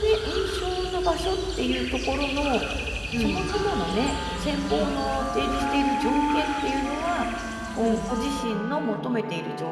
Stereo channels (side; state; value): both; identical; correlation 1.00